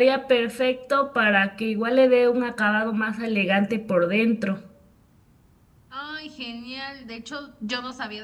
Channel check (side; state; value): both; identical; correlation 1.00